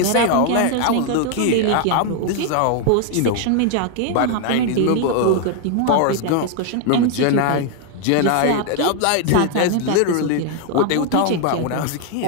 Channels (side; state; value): both; different; correlation 0.00